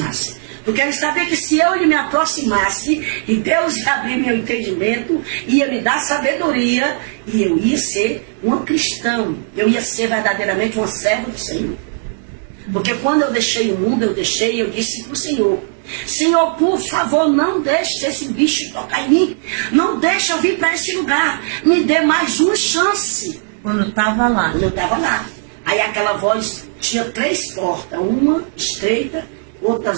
Porque ele sabia que se eu me aproximasse, e Deus ia abrir meu entendimento, ia me dar sabedoria, e eu ia ser uma cristã, eu ia ser verdadeiramente uma serva do Senhor. Porque quando eu deixei o mundo, eu disse para o Senhor: Senhor, por favor, não deixe esse bicho tocar em mim, não deixe eu vir para esse lugar, me dê mais uma chance. Quando estava lá. Quando eu estava lá. Aí aquela voz tinha 3 portas, uma estreita,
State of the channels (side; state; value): left; silent; 68 dB below the other